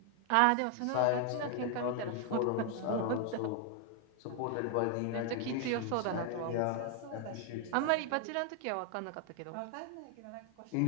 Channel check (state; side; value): different; both; correlation 0.00